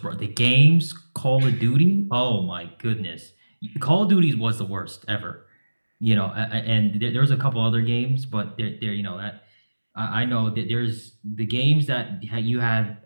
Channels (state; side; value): inverted; both; correlation -1.00